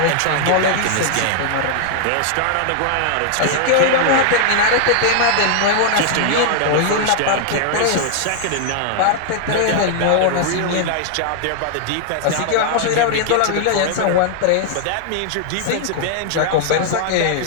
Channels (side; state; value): both; different; correlation -0.01